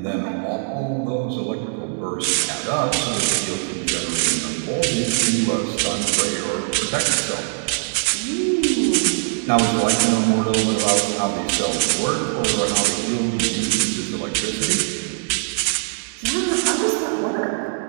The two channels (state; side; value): silent; left; digital silence